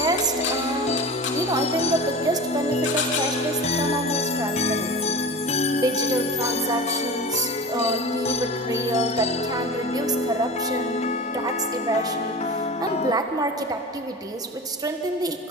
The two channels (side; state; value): both; normal; correlation 0.33